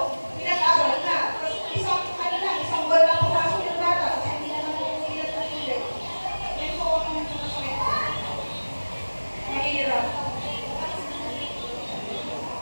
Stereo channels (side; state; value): both; inverted; correlation -1.00